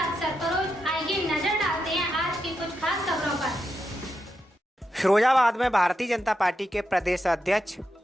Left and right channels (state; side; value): normal; both; correlation 0.85